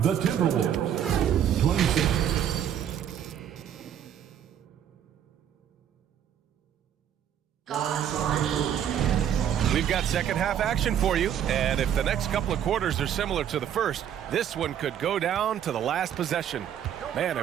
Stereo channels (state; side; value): quieter; left; 9.6 dB